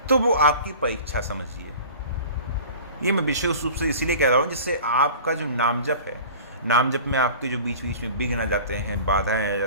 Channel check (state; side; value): inverted; both; correlation -0.41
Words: तो वो आपकी परीक्षा समझिए। ये मैं विशेष रूप से इसीलिए कह रहा हूँ जिससे आपका जो नाम जप है, नाम जप में आपके जो बीच बीच में विघ्न आ जाते हैं, बाधाएं आ